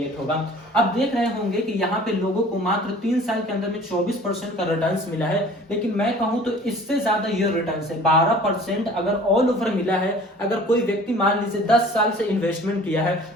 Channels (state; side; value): normal; both; correlation 0.48